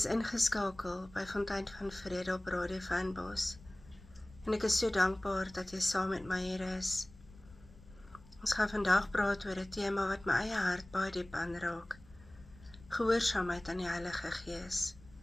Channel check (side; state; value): left; noise; rumble, 22 dB below the sound